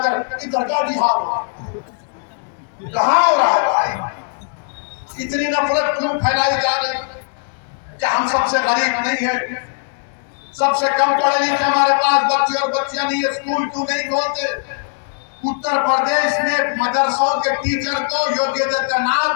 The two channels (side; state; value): right; silent; digital silence